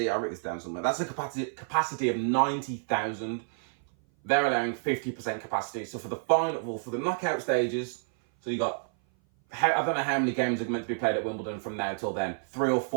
I'll write this down somewhere, that's a capacity of 90,000. They're allowing 50% capacity. So for the for the knockout stages, so you got, I don't know how many games are meant to be played at Wimbledon from now till then, 3 or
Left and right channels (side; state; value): left; silent; 56 dB below the other